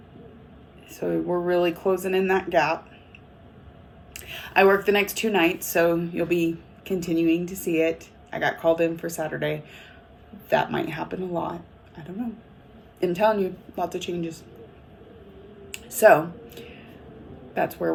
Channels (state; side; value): identical; both; correlation 1.00